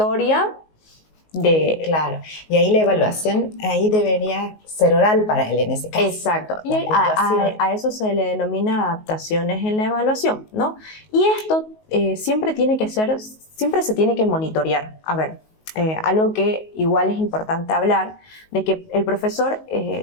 Claro, y ahí la evaluación ahí debería ser oral para él en ese caso. Exacto, y a eso se le denomina adaptaciones en la evaluación, ¿no? Y esto siempre se tiene que monitorear. A ver, algo que igual es importante hablar, de que el profesor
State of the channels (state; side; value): late; right; 19 ms